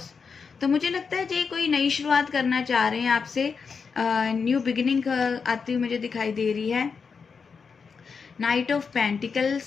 तो मुझे लगता है ये कोई नई शुरुआत करना चाह रहे हैं आपसे। न्यू बिगिनिंग आती हुई मुझे दिखाई दे रही है। Night of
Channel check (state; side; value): quieter; right; 5.6 dB